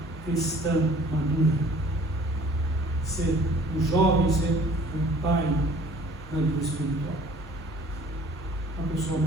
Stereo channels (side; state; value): both; normal; correlation 0.53